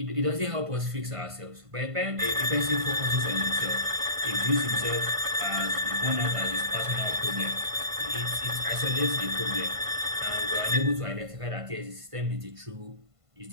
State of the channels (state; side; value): late; left; 1.5 ms